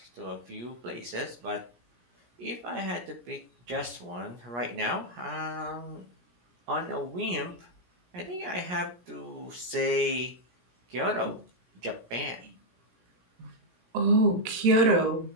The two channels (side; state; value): left; late; 17 ms